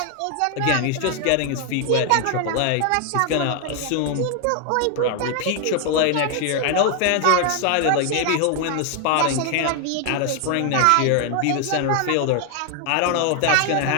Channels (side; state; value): both; different; correlation 0.00